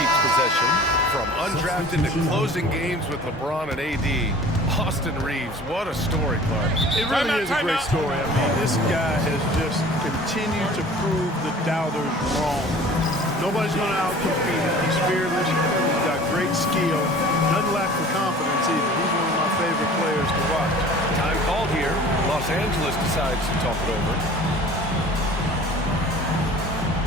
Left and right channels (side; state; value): both; normal; correlation 0.45